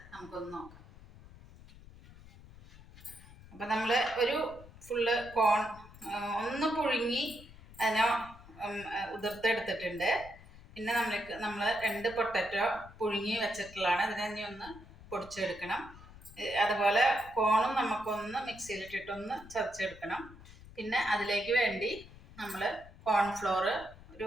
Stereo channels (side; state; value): left; noise; rumble, 19 dB below the sound